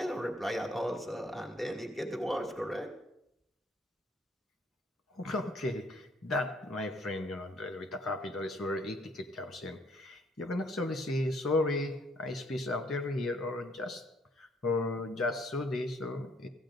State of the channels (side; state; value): both; normal; correlation 0.65